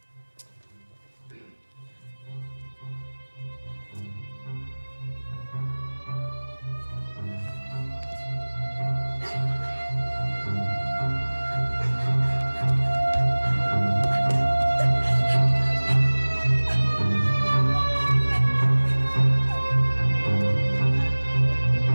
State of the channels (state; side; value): inverted; both; correlation -1.00